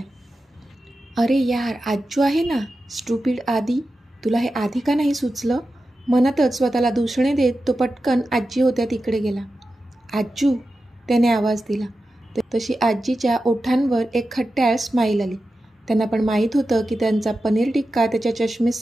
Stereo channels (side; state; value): both; normal; correlation 0.92